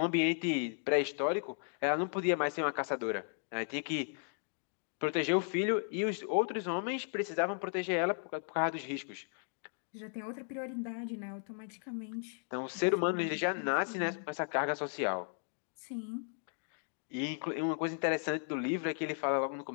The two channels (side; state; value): right; silent; 54 dB below the other